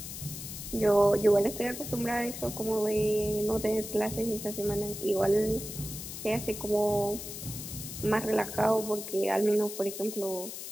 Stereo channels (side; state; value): left; noise; hiss, 9 dB below the sound